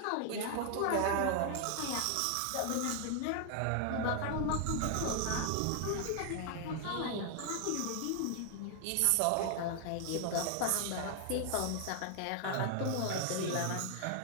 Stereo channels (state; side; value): different; both; correlation 0.00